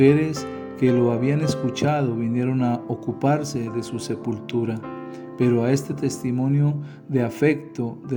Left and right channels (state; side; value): identical; both; correlation 1.00